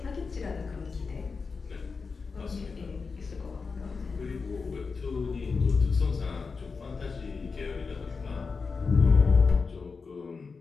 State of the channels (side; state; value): right; quieter; 4.8 dB